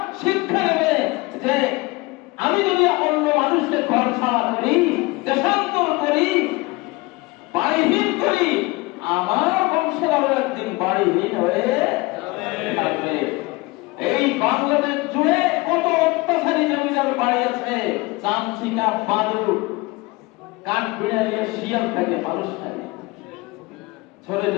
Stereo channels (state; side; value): quieter; right; 23.5 dB